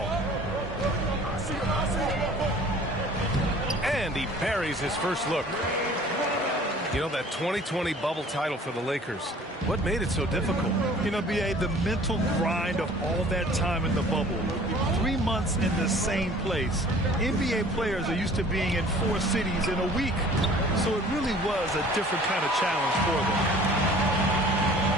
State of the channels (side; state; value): both; normal; correlation 0.49